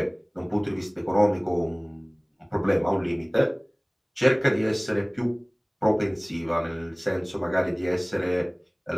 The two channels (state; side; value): identical; both; correlation 1.00